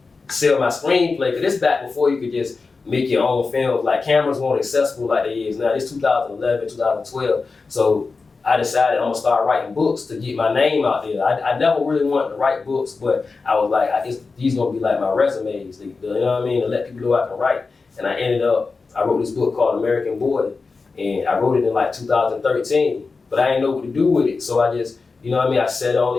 sell my screenplay, because this back before you could just make your own films, like cameras weren't accessible like they is now. It's 2011, 2012. So I decided I'm gonna start writing books to get my name out there. I never really wanted to write books, but I was like, these gonna be like my resumes, you know what I mean, to let people know I can write. And I wrote this book called American Boy, and I wrote it in like 2013, but I didn't know what to do with it. So I just, you know what I mean, I sat on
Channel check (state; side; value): quieter; right; 4.3 dB